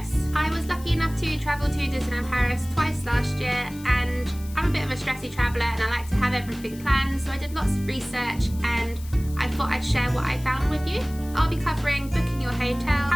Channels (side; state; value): left; noise; hiss, 19 dB below the sound